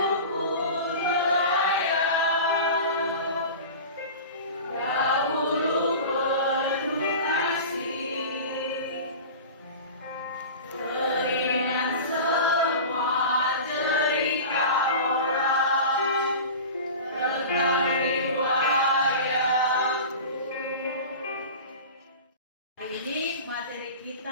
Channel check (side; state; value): both; inverted; correlation -0.34